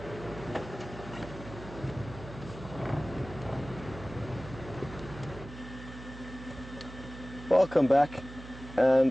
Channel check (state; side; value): noise; right; hum, 14 dB below the sound